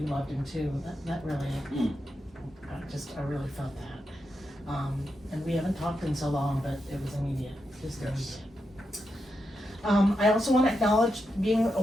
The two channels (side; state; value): both; normal; correlation 0.86